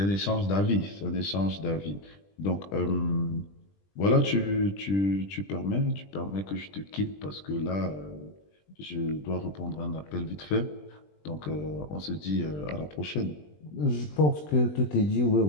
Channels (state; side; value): late; right; 20 ms